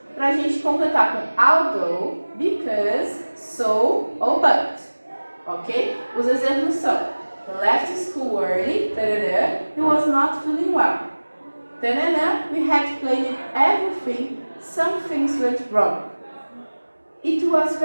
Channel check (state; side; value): inverted; both; correlation -1.00